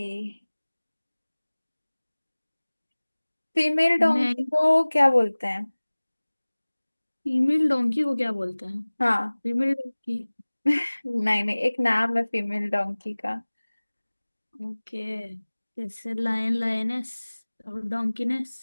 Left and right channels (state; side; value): inverted; both; correlation -1.00